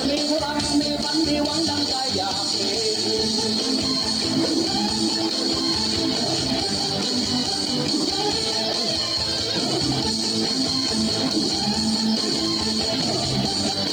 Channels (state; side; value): noise; left; hiss, 26 dB below the sound